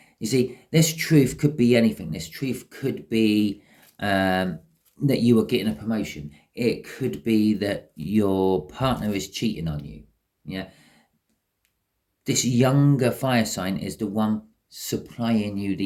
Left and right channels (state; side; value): identical; both; correlation 1.00